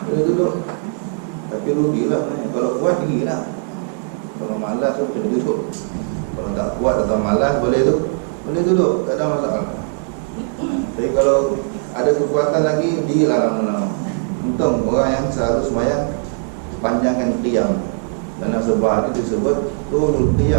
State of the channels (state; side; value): silent; left; 66 dB below the other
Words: duduk. Tapi rugilah kalau kuat tinggilah. Kalau malas tu kena duduk. Kalau tak kuat atau malas boleh duduk, tak ada masalah. Tapi kalau ada kekuatan lagi, dirilah lama-lama. Untung orang yang selalu sembahyang panjangkan qiyam. Dalam sebuah hadis disebut tulul